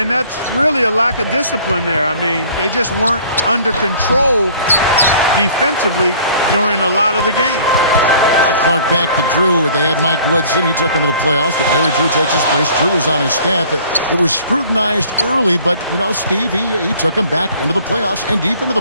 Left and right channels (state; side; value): inverted; both; correlation -0.52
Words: that's really a lack of discipline there. I mean, they just weren't under control defensively during a lot of the game. Clark back to Drew. They had Mike Woodson. He took him to the playoffs, but Larry Drew takes his place. Drew is on his staff. It was scrutinized early, but, you know, Steve, he took him back into the playoffs and deep into